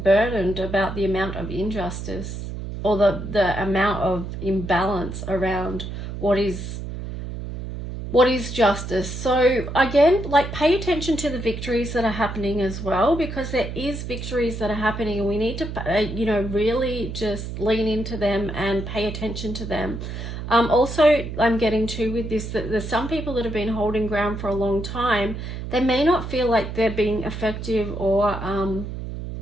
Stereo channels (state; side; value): noise; right; hum, 7 dB below the sound